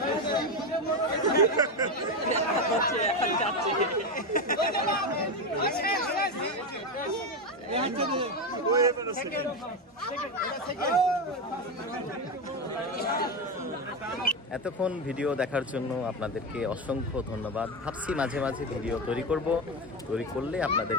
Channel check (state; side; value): normal; both; correlation 0.14